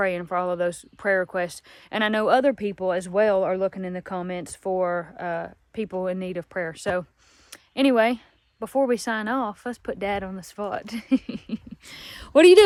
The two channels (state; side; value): identical; both; correlation 1.00